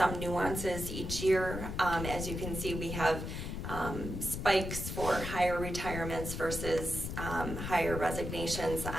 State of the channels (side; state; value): left; noise; rumble, 5 dB below the sound